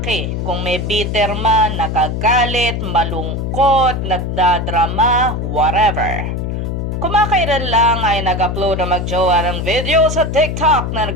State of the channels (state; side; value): noise; left; hum, 3 dB below the sound